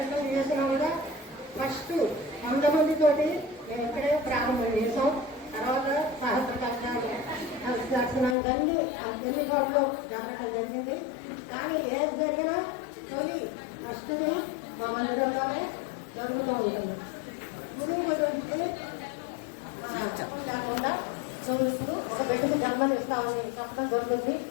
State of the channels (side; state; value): right; drops out; at 8.3 s